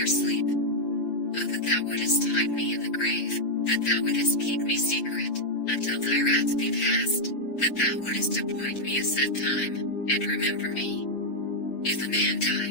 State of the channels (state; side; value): late; right; 6.9 ms